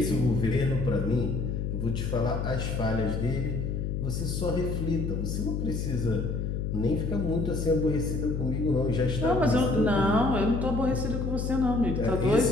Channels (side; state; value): left; noise; hum, 2 dB below the sound